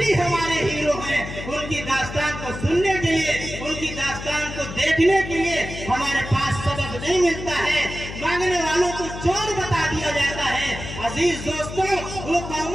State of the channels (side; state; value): left; noise; hum, 9 dB below the sound